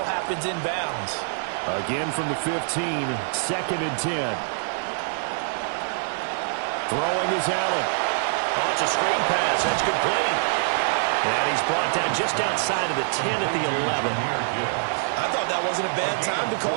happens inbounds. Again from the 15, 2nd and 10. Throwing is Allen. Oh, it's a screen pass. That's complete. And he's brought down just outside of the 10 at the 11. I thought that wasn't a bad time to call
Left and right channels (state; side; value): silent; left; 62 dB below the other